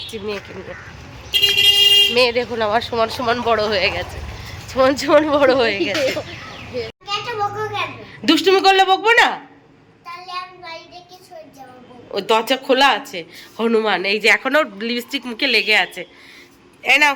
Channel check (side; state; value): both; identical; correlation 1.00